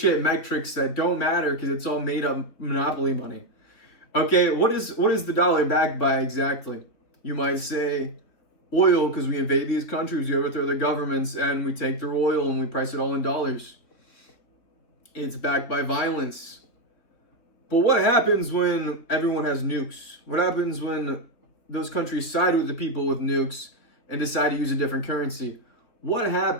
metrics that don't matter because it's all made up monopoly money. Okay, what is the dollar backed by exactly? You might say oil, because we invade these countries, we overthrow their governments, and we take their oil and we price it all in dollars. It's backed by violence. But what happens when everyone has nukes? What happens when those countries side with the people with nukes and decide to use a different currency? What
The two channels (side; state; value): right; late; 3.7 ms